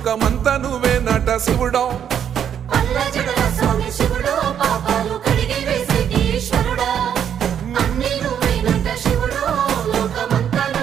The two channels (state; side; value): quieter; left; 8.9 dB